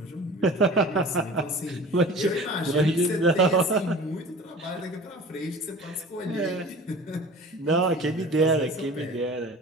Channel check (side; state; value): both; normal; correlation 0.40